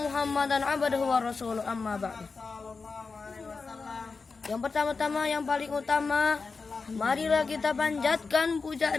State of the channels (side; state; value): right; quieter; 4.5 dB